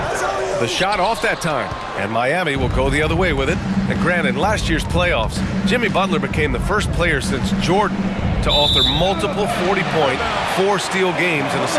The shot off that time. And Miami will go the other way with it. And granted, in last year's playoffs, Jimmy Butler became the first player since Jordan to author multiple 40-point, 4-steal games in a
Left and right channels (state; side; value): identical; both; correlation 1.00